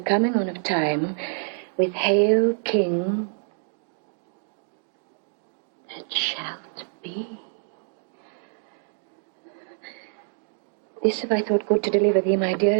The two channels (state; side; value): silent; left; digital silence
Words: on of time with Hail, King, that shalt be. This have I thought good to deliver thee, my